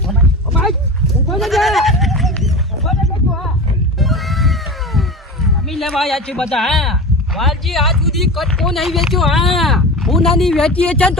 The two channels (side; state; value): both; normal; correlation 0.29